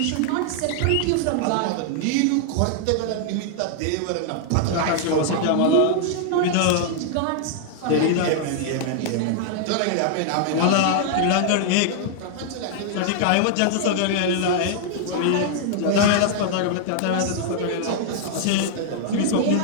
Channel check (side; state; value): both; different; correlation -0.01